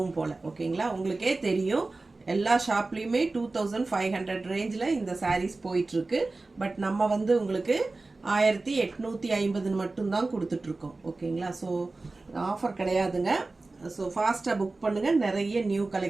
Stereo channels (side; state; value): left; quieter; 3.4 dB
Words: போல. ஓகேங்களா, உங்களுக்கே தெரியும் எல்லா ஷாப்லயுமே 2500 ரேஞ்சில் இந்த சாரீஸ் போயிட்டு இருக்கு. பட் நம்ம வந்து உங்களுக்கு 1850 மட்டும்தான் கொடுத்துட்டு இருக்கோம். ஓகேங்களா, ஸோ ஆஃபர் கிடையாதுங்க. ஸோ ஃபாஸ்ட்டாக புக் பண்ணுங்க. நிறைய நியூ